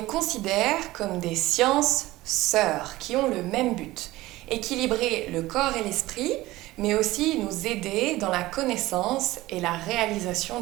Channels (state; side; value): quieter; left; 18.0 dB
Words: considère comme des sciences sœurs qui ont le même but, équilibrer le corps et l'esprit, mais aussi nous aider dans la connaissance et la réalisation